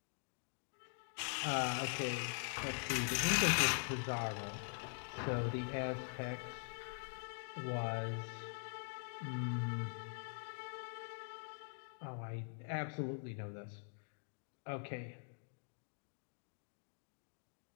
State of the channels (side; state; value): right; silent; digital silence